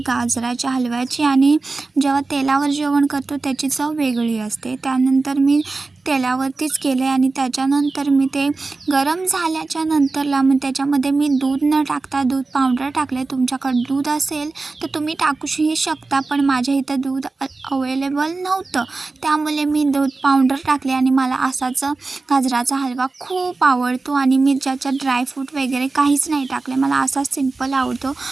गाजराच्या हलव्याची, आणि जेव्हा तेलावर जेवण करतो त्याची चव वेगळी असते। त्यानंतर मी तेलावरतीच केले आणि त्याच्यानंतर मी ते गरम झाल्याच्या नंतरला मग त्याच्यामध्ये मी दूध न टाकता दूध पावडर टाकले। तुमच्याकडे दूध असेल तर तुम्ही टाकूही शकता, पण माझ्या इथं दूध अवेलेबल नव्हतं, त्यामुळे मी दूध पावडर टाकले आणि मला असाच गाजराचा हलवा खूप आवडतो आणि मी ज्याच्यात ड्रायफ्रूट वगैरे काहीच नाही टाकले, मला असाच सिंपल आवडतो।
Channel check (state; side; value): quieter; left; 3.7 dB